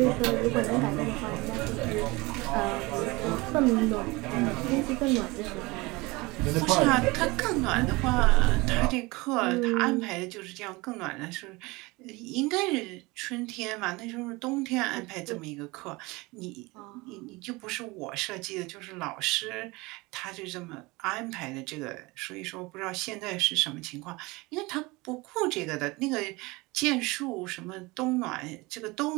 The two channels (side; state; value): left; quieter; 23.5 dB